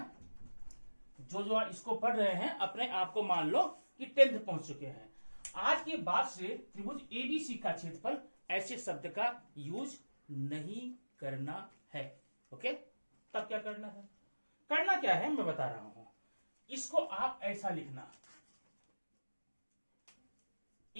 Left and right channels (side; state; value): both; inverted; correlation -1.00